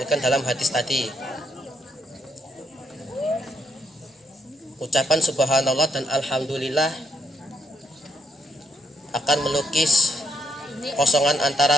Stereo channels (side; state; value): both; normal; correlation 0.75